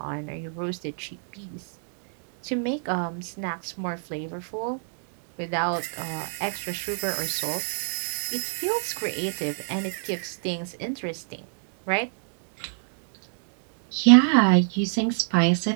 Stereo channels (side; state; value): left; silent; digital silence